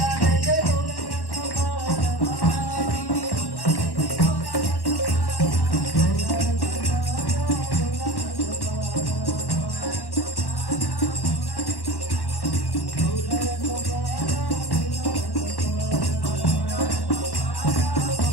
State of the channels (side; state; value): right; late; 1.1 ms